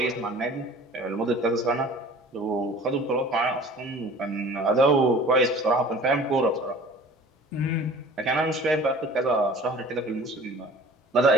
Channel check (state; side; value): normal; both; correlation 0.45